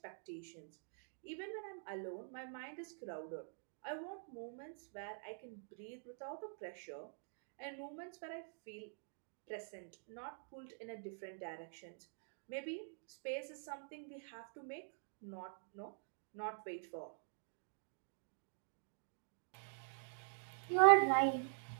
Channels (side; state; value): left; silent; digital silence